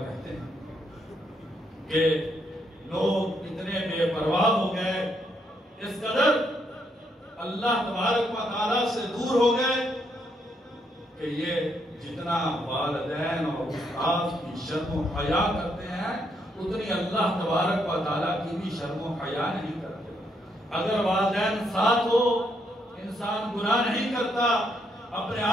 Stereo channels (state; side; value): normal; both; correlation 0.75